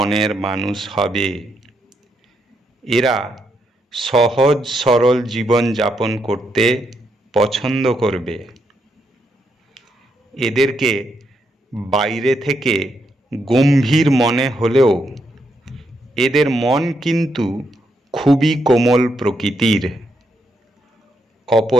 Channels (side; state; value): both; normal; correlation 0.79